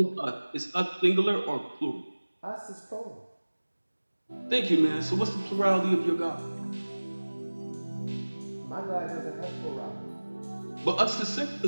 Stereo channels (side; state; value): both; inverted; correlation -1.00